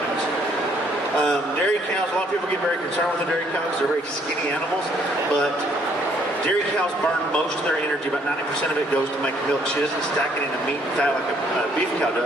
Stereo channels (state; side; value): normal; both; correlation 0.66